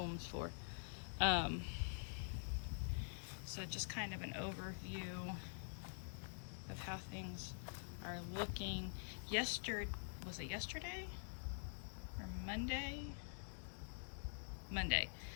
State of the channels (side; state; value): right; silent; digital silence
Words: for. So just kind of an overview of how things are looking. Was it yesterday or Monday? Monday.